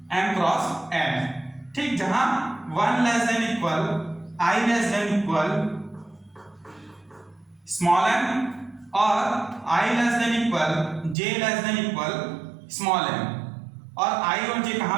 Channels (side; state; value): left; drops out; at 11.2 s